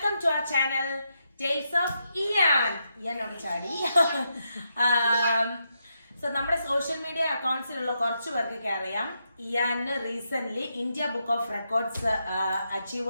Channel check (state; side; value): inverted; both; correlation -0.82